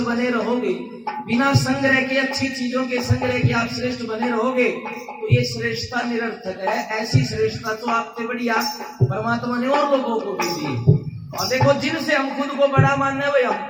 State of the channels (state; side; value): identical; both; correlation 1.00